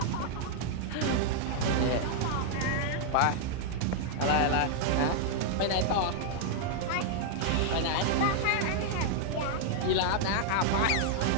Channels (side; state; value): both; different; correlation -0.01